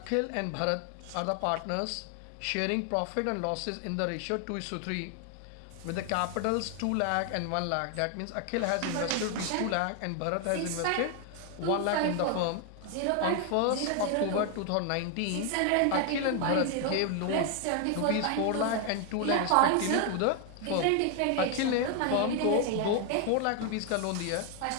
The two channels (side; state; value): both; different; correlation 0.01